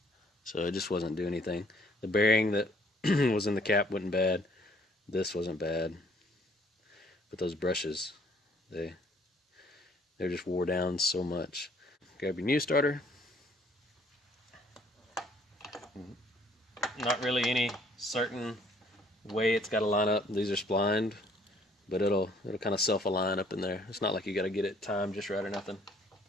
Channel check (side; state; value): both; normal; correlation 0.61